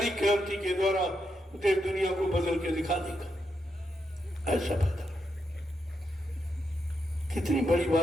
क्रांति के द्वारा देश दुनिया को बदल के दिखा देगा। ऐसा बता कितनी बड़ी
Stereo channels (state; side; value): normal; both; correlation 0.83